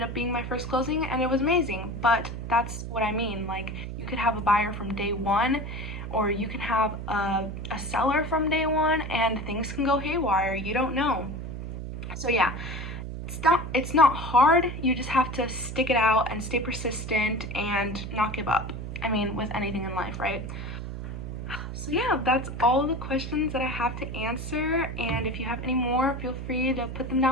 up being my first closing and it was amazing. But that's what I mean. Like, you could have a buyer from day one, or you can have a seller from day one, and things can go haywire. You don't know. So yeah, it's not hard. You just have to stick it out and stay persistent and not give up. I mean, with anything in life, right? So yeah, that's all the questions that I have to answer, and if you have any more, feel free to put them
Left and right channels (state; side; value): noise; right; hum, 7 dB below the sound